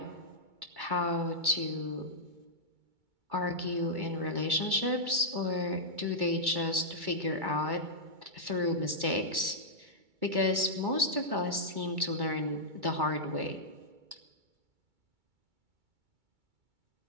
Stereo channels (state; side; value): late; left; 2.2 ms